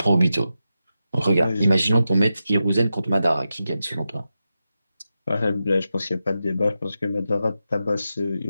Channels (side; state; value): both; inverted; correlation -0.90